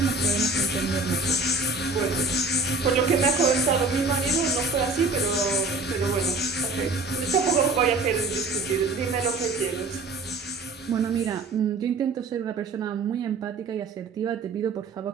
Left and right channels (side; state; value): left; quieter; 3.4 dB